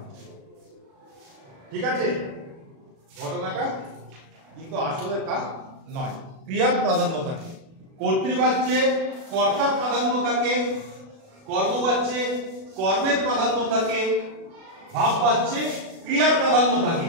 ঠিক আছে, ঘটনাটা কিন্তু আসলে তা নয়। ক্রিয়ার প্রাধান্য থাকে, কর্তৃবাচ্যে কর্তার প্রাধান্য থাকে, কর্মবাচ্যে কর্মের প্রাধান্য থাকে, ভাববাচ্যে ক্রিয়ার প্রাধান্য থাকে।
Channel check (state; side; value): late; left; 36 ms